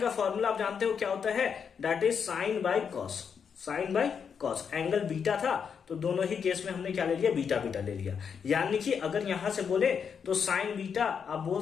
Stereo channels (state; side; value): quieter; right; 6.8 dB